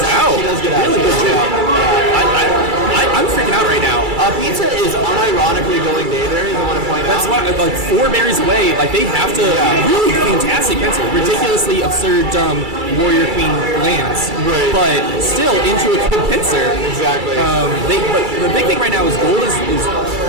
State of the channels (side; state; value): left; late; 2.3 ms